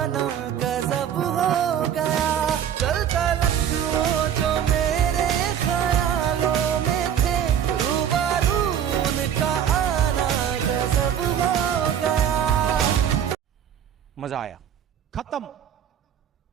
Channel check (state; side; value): quieter; left; 9.2 dB